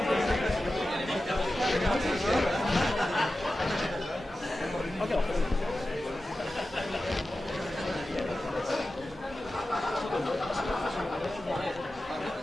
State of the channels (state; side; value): normal; both; correlation 0.94